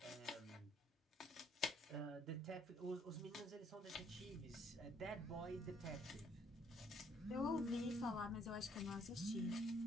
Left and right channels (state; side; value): normal; both; correlation 0.65